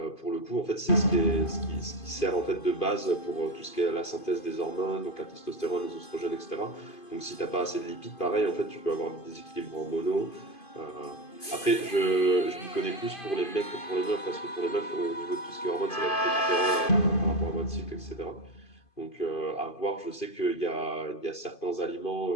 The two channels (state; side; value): late; right; 2.5 ms